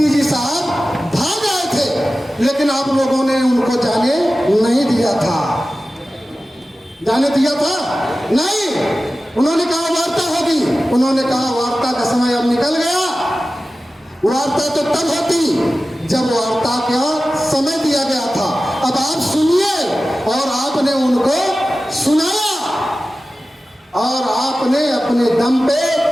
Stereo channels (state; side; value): normal; both; correlation 0.95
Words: साहब भाग आए थे, लेकिन आप लोगों ने उनको जाने नहीं दिया था। जाने दिया था? नहीं। उन्होंने कहा वार्ता होगी, उन्होंने कहा वार्ता का समय अब निकल गया। वार्ता तो तब होती जब वार्ता का समय दिया गया था। अब आप सुनिए। और आपने उनको सुनाया और आपने अपने दम पे